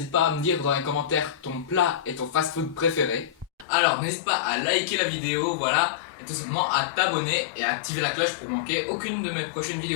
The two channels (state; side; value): drops out; right; at 3.7 s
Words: pas à me dire dans les commentaires ton plat et ton fast-food préféré. Alors, n'hésite pas à liker la vidéo, voilà, et tout simplement à t'abonner et à activer la cloche pour manquer aucune de mes prochaines